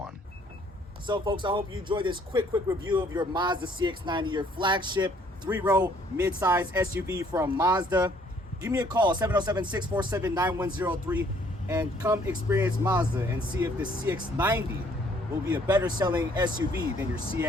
So folks, I hope you enjoyed this quick review of your Mazda CX-90, your flagship 3-row mid-size SUV from Mazda. Give me a call, 707-647-9103, and come experience Mazda and see if the CX-90 will be a better selling SUV than your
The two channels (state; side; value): normal; both; correlation 0.62